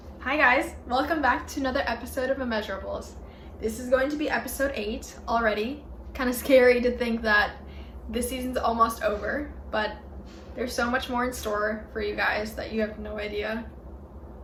Hi guys, welcome back to another episode of Immeasurables. This is going to be episode 8 already. Kind of scary to think that this season's almost over, but there's so much more in store for you guys that you have no idea.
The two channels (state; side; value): identical; both; correlation 1.00